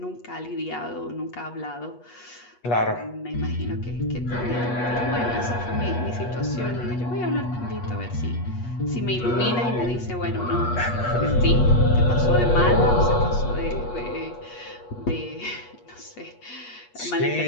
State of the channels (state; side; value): late; right; 8.3 ms